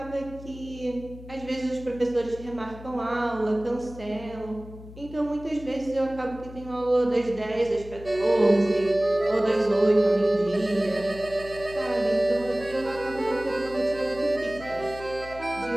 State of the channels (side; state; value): left; noise; hum, 16 dB below the sound